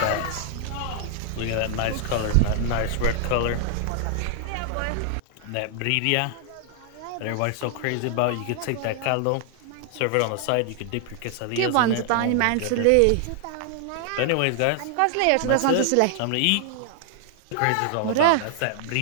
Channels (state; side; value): different; both; correlation 0.00